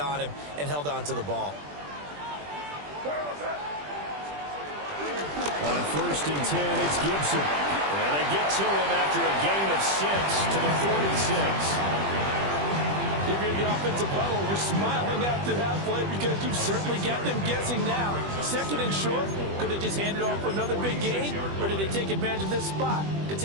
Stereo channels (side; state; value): left; late; 20 ms